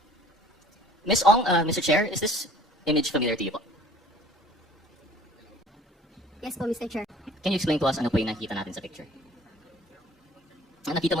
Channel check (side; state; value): both; normal; correlation 0.51